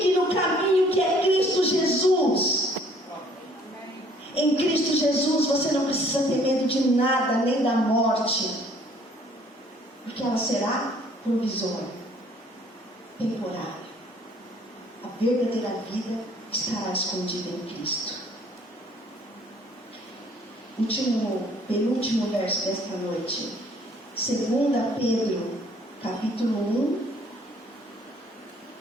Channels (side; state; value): both; normal; correlation 0.58